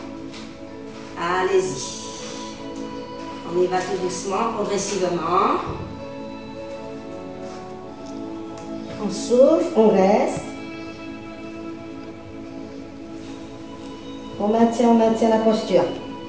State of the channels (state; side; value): identical; both; correlation 1.00